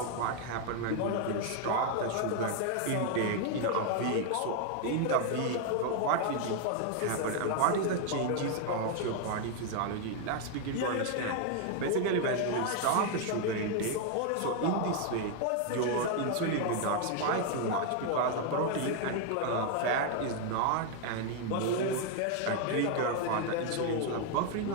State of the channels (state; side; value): different; both; correlation 0.00